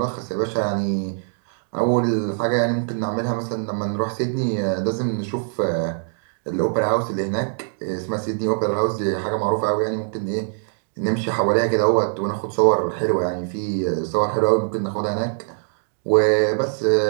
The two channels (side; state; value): left; silent; digital silence